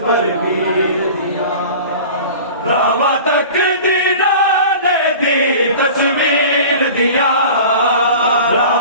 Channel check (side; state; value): both; inverted; correlation -0.39